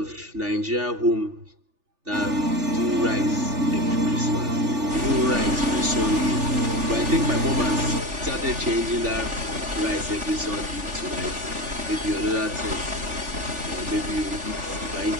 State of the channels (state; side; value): late; left; 3.4 ms